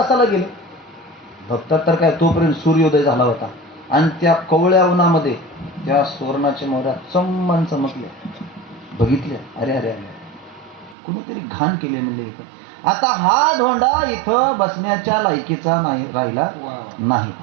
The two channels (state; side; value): drops out; left; at 11.0 s